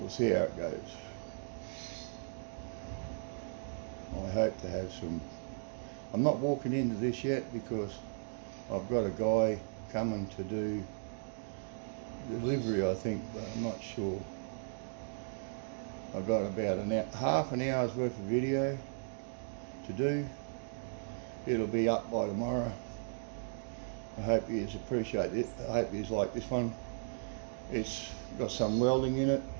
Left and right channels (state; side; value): silent; left; digital silence